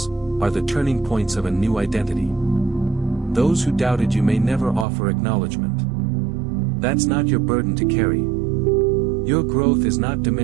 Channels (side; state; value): left; drops out; at 4.9 s